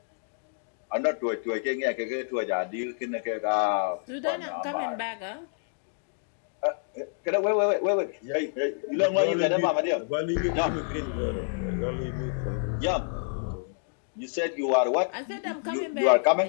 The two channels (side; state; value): right; silent; digital silence